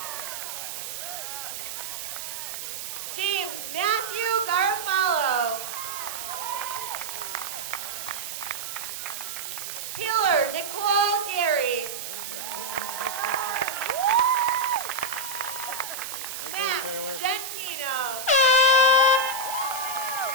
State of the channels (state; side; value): noise; right; hiss, 7 dB below the sound